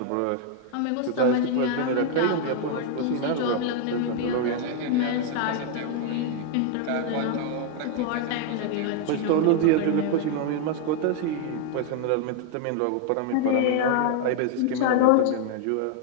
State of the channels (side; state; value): both; different; correlation 0.00